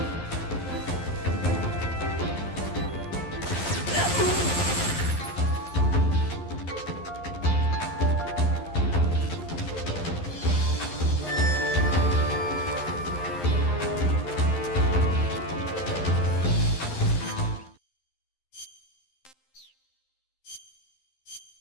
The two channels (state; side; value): late; right; 11 ms